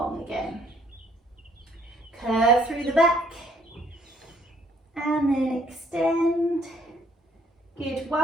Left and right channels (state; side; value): normal; both; correlation 0.64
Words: again. Curve through the back, and then extend. Good,